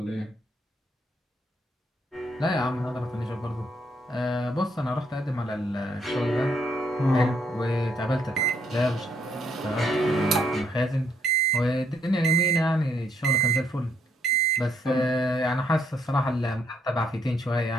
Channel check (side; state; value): both; normal; correlation 0.71